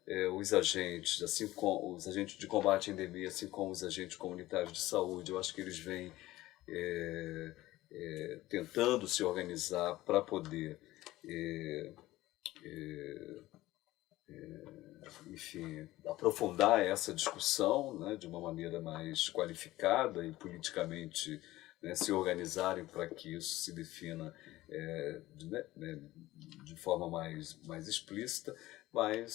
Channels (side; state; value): right; quieter; 16.9 dB